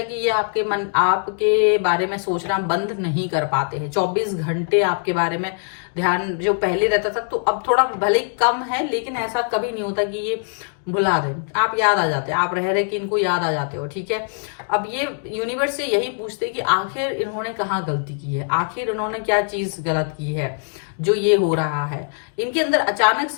कि ये आपके बारे में सोचना बंद नहीं कर पाते हैं। 24 घंटे आपके बारे में ध्यान जो पहले रहता था तो अब थोड़ा भले कम है, लेकिन ऐसा कभी नहीं होता कि ये भुला दे। आप याद आ जाते हैं, आप रह रहे कि इनको याद आ जाते हो। ठीक है, अब ये यूनिवर्स से यही पूछते हैं कि आखिर इन्होंने कहाँ गलती की है, आखिर इन्होंने क्या चीज गलत की है जो ये हो रहा है। इनके अंदर अचानक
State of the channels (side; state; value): right; silent; 64 dB below the other